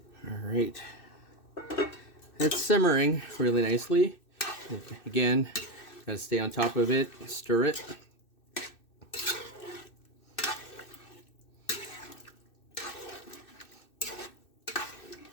All right, it's simmering really nicely. Again, gotta stay on top of it, stir it.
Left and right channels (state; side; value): late; right; 2.6 ms